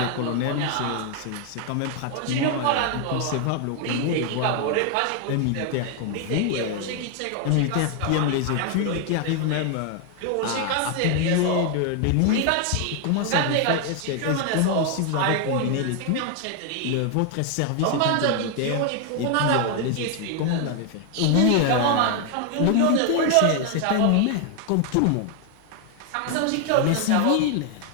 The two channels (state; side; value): different; both; correlation 0.00